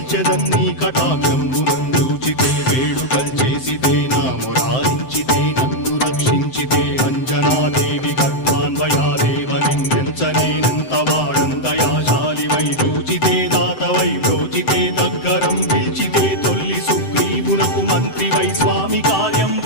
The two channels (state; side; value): late; right; 7.8 ms